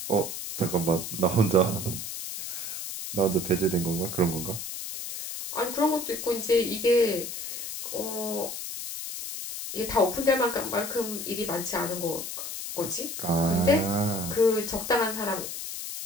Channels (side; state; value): left; noise; hiss, 6 dB below the sound